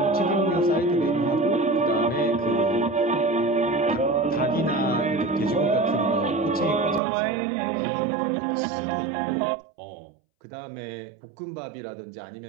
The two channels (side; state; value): left; drops out; at 7.0 s